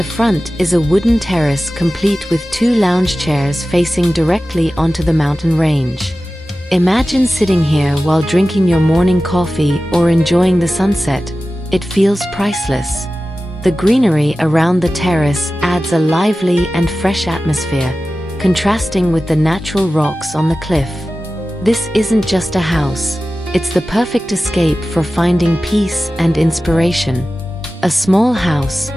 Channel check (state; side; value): normal; both; correlation 0.95